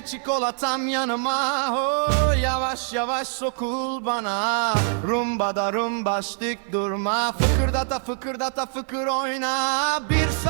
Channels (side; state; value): left; silent; 63 dB below the other